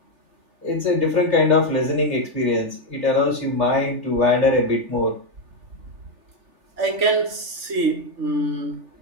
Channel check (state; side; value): late; left; 3.4 ms